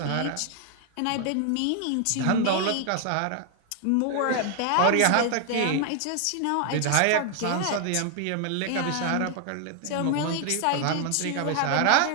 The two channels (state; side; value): different; both; correlation 0.00